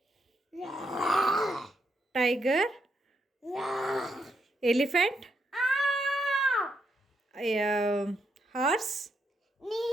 tiger elephant horse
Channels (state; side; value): normal; both; correlation 0.79